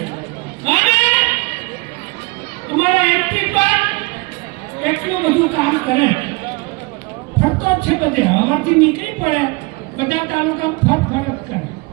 અને અમારા એમપી પર એટલું બધું કામ કરે. ફરતો જ છે બધે. હવાથી નીકળી પડે બધા તાલુકા ફરફર કરે.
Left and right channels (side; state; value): left; quieter; 26.5 dB